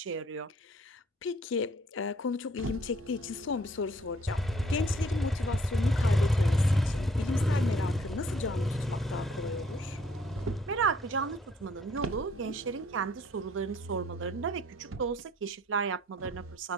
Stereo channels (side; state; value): both; normal; correlation 0.61